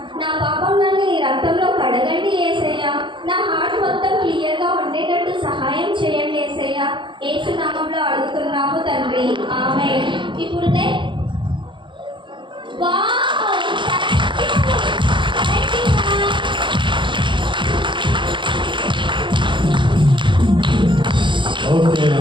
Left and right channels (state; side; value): late; left; 0.23 ms